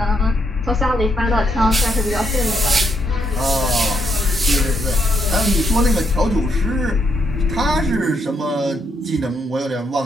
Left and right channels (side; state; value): both; normal; correlation 0.76